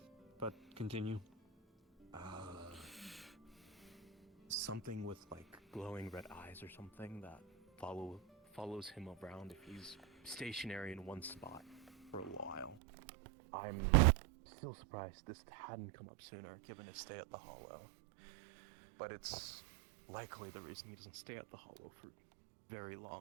but continue. Something with like glowing red eyes or something that follows him around if he's stationary in one spot for a while. I'm still surprised this hadn't come up sooner, given his stay at the Hollow. But it's likely the reason he doesn't stay at the Hollow for very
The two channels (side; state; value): left; drops out; at 12.8 s